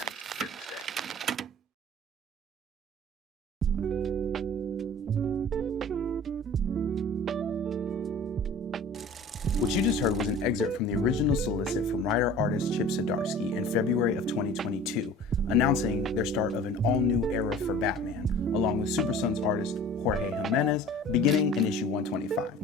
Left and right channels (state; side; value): normal; both; correlation 0.44